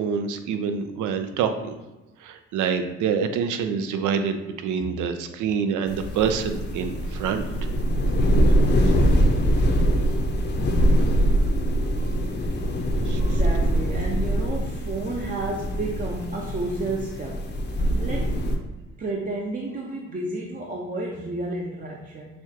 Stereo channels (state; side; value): normal; both; correlation 0.67